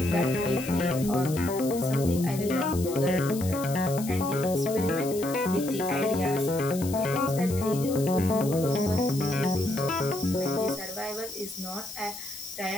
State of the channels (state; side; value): noise; left; hiss, 12 dB below the sound